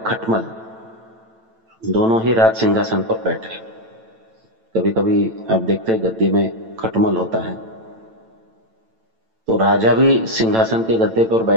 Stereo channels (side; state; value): left; late; 9.0 ms